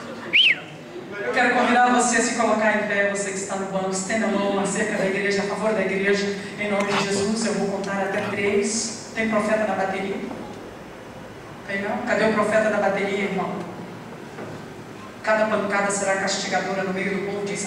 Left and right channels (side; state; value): both; identical; correlation 1.00